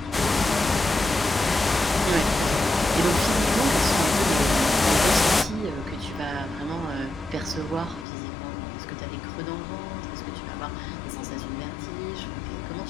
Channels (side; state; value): right; drops out; at 8.1 s